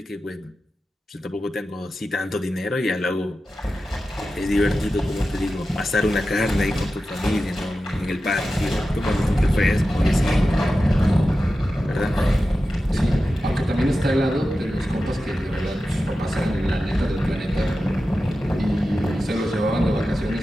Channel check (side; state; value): both; normal; correlation 0.93